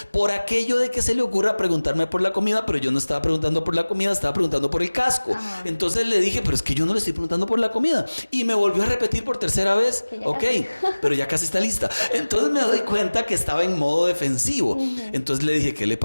por aquello de que se le ocurra preguntarme por la comida, pero yo no estaba preguntando por la comida, estaba preguntando por el casco. Entonces le dije, pero es que yo no le estoy preguntando por la comida. Y me volvió a repetir por tercera vez, ok, pero ya casi está lista. Entonces me doy cuenta que estaba en modo defensivo. Entonces le dije, ¿qué le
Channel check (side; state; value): both; inverted; correlation -1.00